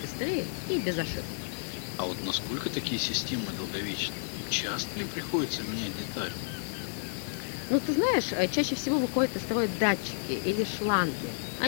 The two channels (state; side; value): silent; right; digital silence